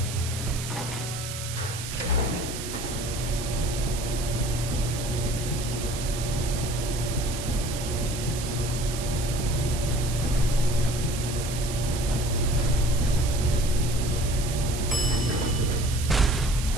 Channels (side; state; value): right; noise; hiss, 8 dB below the sound